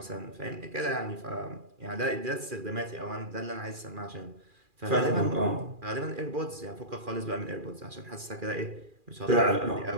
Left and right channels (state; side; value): late; left; 2.4 ms